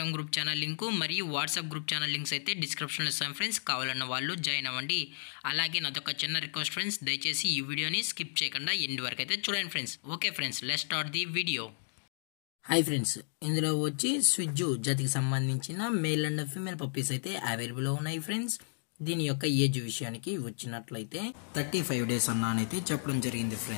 గ్రూప్ ఛానల్ లింకు మరియు వాట్సాప్ గ్రూప్ ఛానల్ లింక్స్ అయితే డిస్క్రిప్షన్లో ఇస్తాను ఫ్రెండ్స్. కావాలన్న వాళ్ళు జాయిన్ అవ్వండి. అలాగే నాదొక చిన్న రిక్వెస్ట్ ఫ్రెండ్స్, దయచేసి ఈ వీడియోని స్కిప్ చేయకుండా ఎండ్ వరకు అయితే చూడండి friends. Okay friends, let's start the video. Hi friends, ఇందులో వచ్చి స్విజ్జు జాతికి సంబంధించిన మేల్ అండ్ ఫీమేల్ పప్పీస్ అయితే అవైలబుల్ ఉన్నాయి ఫ్రెండ్స్. దీని యొక్క ఏజ్ విషయానికి వచ్చినట్లయితే 35 days అన్నానైతే చెప్పడం జరిగింది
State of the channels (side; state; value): right; silent; digital silence